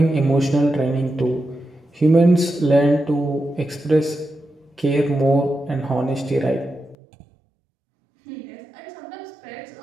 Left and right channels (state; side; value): drops out; left; at 7.0 s